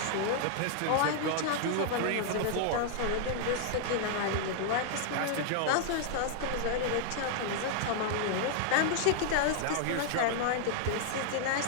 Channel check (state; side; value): different; both; correlation -0.01